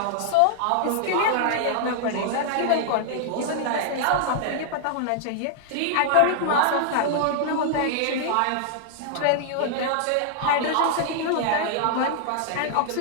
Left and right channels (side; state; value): both; different; correlation -0.01